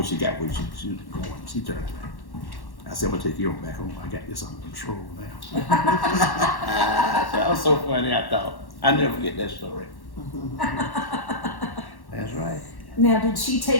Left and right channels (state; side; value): late; right; 1.1 ms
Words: she got where she was going, she turned back. I said, I'm going to take you back home. I got this under control now. That was so funny, I thought. I'll never forget that story. That's right. Now, did she